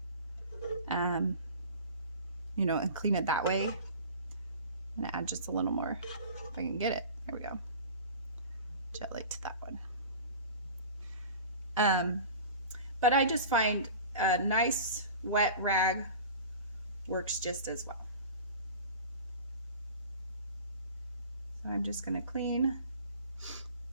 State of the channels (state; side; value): inverted; both; correlation -0.39